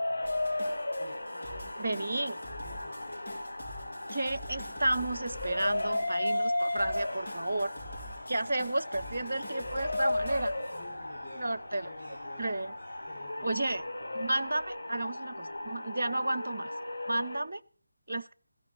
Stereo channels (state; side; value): inverted; both; correlation -0.95